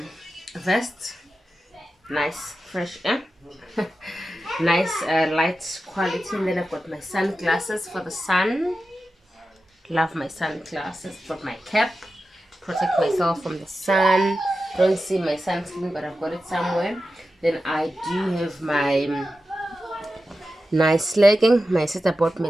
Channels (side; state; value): both; normal; correlation 0.92